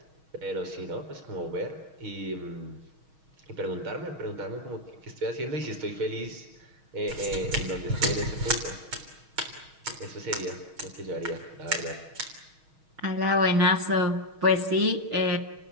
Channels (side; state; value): left; late; 6.3 ms